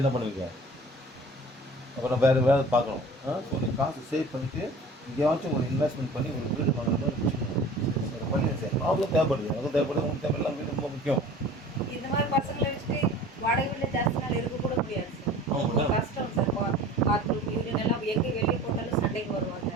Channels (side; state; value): both; normal; correlation 0.43